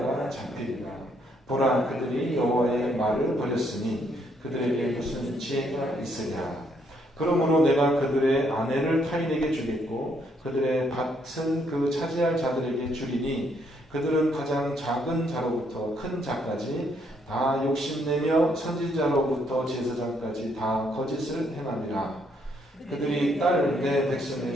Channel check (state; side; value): normal; both; correlation 0.71